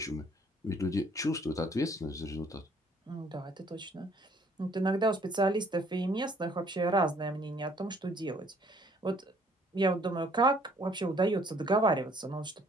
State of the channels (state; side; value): normal; both; correlation 0.60